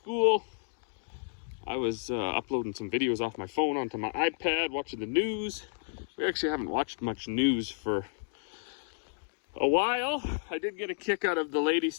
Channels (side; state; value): right; silent; digital silence